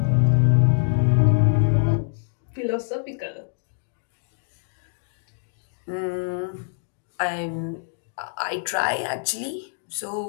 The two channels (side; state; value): right; silent; digital silence